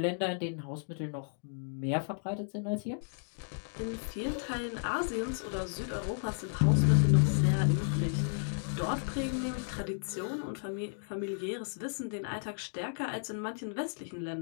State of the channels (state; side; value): silent; right; digital silence